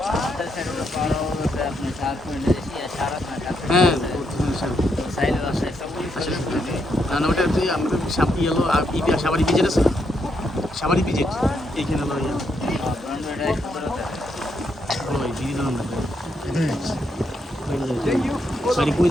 হ্যাঁ না না ওটা হচ্ছে আমাদের ইয়েলো সাবারি পিজেট আছে, সাবারি পিজেট এইখানে হলো ইয়ে ওই দিদি নাম সরি কই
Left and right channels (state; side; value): normal; both; correlation 0.78